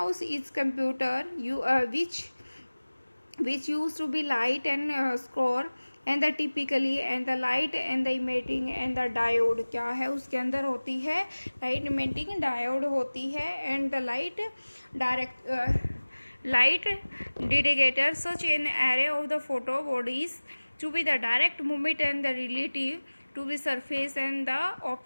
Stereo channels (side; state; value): both; inverted; correlation -1.00